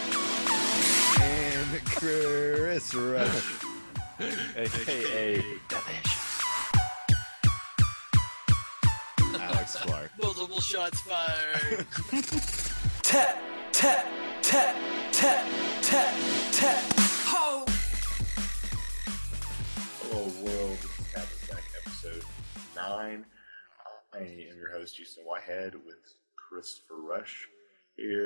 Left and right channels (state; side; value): inverted; both; correlation -1.00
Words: And Chris Rush, aka Delicious. Alex Clark. Multiple shots fired. Tap, tap, tap, tap, tap, tap. Ho! Hello, world. This is Captain Stack, episode 9. I am your host, Houston Whitehead, with Christopher Rush.